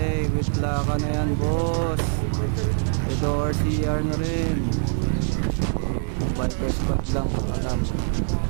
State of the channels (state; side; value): silent; left; 63 dB below the other